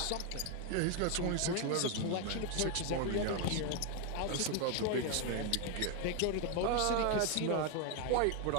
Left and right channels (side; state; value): both; different; correlation 0.01